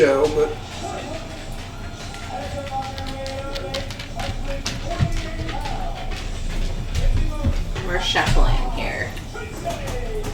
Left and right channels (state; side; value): identical; both; correlation 1.00